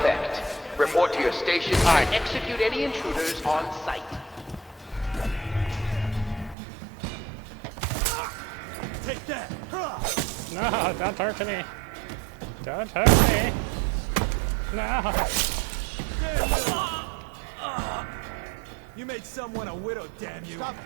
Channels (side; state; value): left; drops out; at 6.6 s